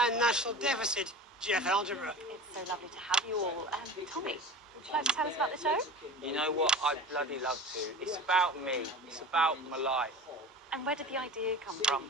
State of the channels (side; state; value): both; normal; correlation 0.34